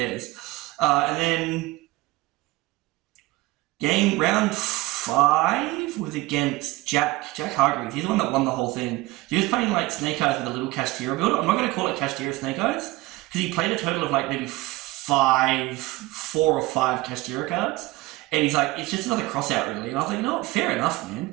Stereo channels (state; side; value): quieter; left; 20.3 dB